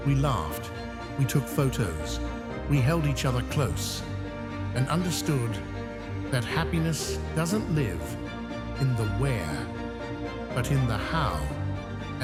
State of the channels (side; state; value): both; identical; correlation 1.00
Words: We laughed, we took photos, we held each other close, and understood that happiness doesn't live in the where, but in the how